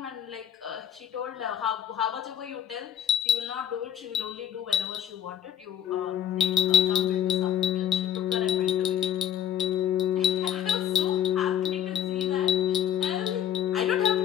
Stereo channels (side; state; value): right; quieter; 10.1 dB